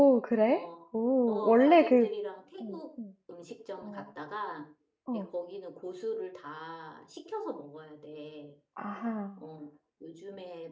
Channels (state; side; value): identical; both; correlation 1.00